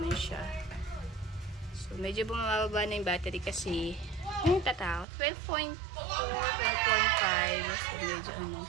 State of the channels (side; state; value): left; drops out; at 5.1 s